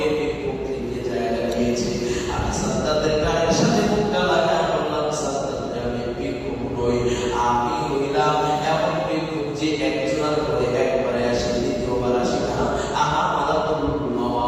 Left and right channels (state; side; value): identical; both; correlation 1.00